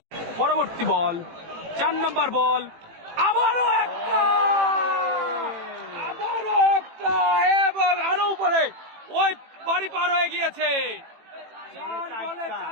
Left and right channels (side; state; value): left; late; 18 ms